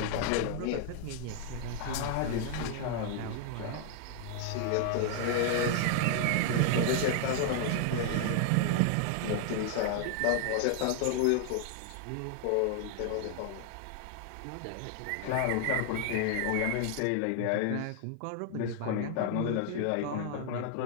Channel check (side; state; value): both; different; correlation 0.00